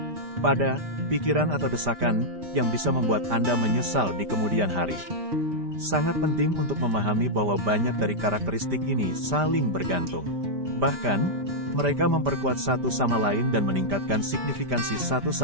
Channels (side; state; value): left; late; 5.1 ms